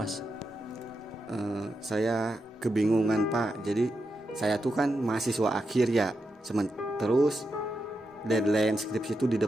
Saya kebingungan Pak. Jadi saya tuh kan mahasiswa akhir ya. Terus deadline skripsi itu di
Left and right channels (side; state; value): both; normal; correlation 0.86